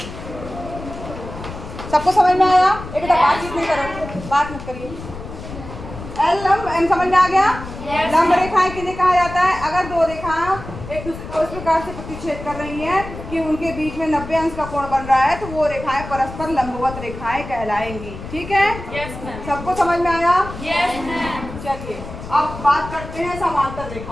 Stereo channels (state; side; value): noise; left; rumble, 11 dB below the sound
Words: सबको समझ में आया? एक बातचीत नहीं करो, बात मत करिए। एल लंब एम समझ में आ गया? लंब रेखाएं किन्हें कहा जाता है? अगर दो रेखाएं एक दूसरे को इस प्रकार से प्रतिच्छेद कर रही हैं कि उनके बीच में 90 अंश का कोण बन रहा है, तो वो रेखाएं परस्पर लंबवत रेखाएं कहलाएंगी। ठीक है? Yes ma'am. सबको समझ में आया? Yes ma'am. चलिए अब बात करते हैं समांतर